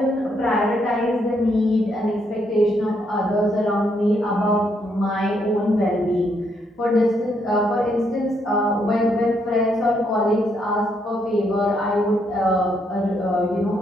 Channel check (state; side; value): normal; both; correlation 0.74